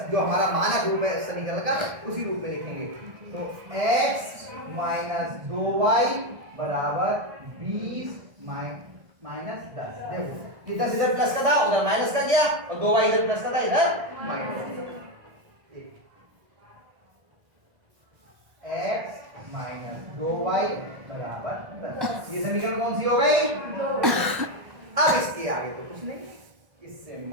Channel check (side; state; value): left; late; 1.6 ms